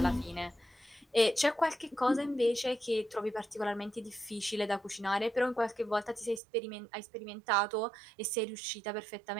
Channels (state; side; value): drops out; left; at 6.4 s